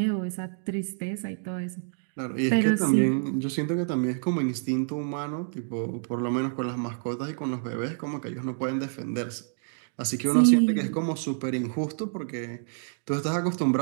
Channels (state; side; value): silent; left; digital silence